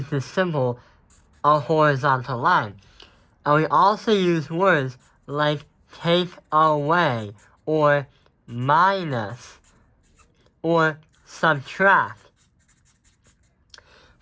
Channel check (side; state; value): both; identical; correlation 1.00